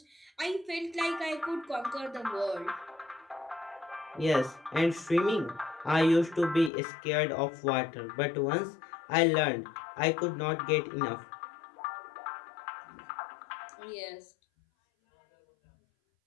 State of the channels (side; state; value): right; drops out; at 6.7 s